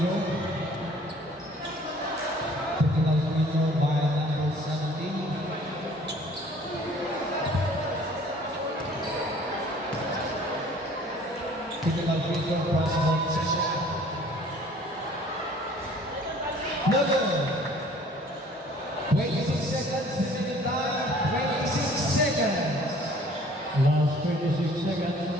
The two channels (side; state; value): both; normal; correlation 0.53